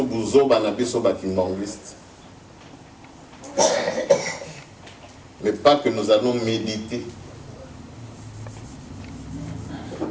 buzo bana biso bakimbangiste mais pas que nous allons méditer.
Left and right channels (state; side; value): identical; both; correlation 1.00